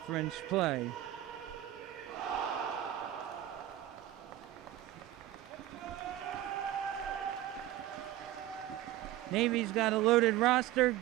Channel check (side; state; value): left; quieter; 13.7 dB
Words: play. Navy's got a loaded roster. In